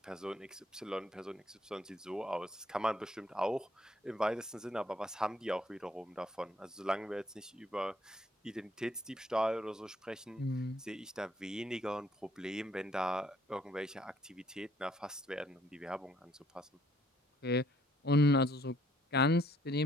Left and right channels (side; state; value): both; normal; correlation 0.65